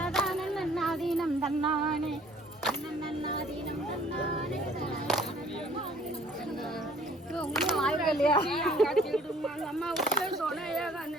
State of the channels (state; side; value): normal; both; correlation 0.56